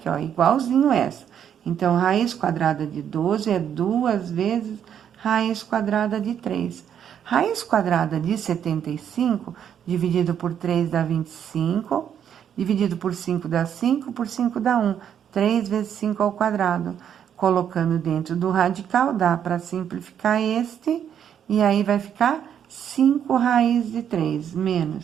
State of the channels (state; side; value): quieter; left; 8.9 dB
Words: ó, igualzinho essa. Então, raiz quadrada de 12 é 2 vezes raiz quadrada de 3. Raiz quadrada de 75, dividido por 3 dá 25, dividido por 5 dá 5, por 5 dá 1. 3 vezes 5 ao quadrado. Colocando dentro do radical, dá para simplificar este, e aí vai ficar 5 raiz de 3,